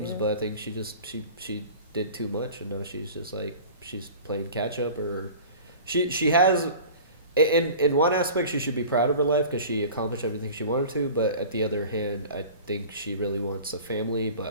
but I think she just she did too much, and now she's just like she's playing catch up, or she has. In one aspect, she should be proud of her life because she accomplished everything she wanted to. But at the other hand, I think she really wants a family.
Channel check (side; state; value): both; inverted; correlation -0.40